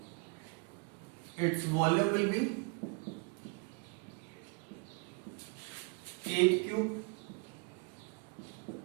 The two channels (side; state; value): left; quieter; 30.3 dB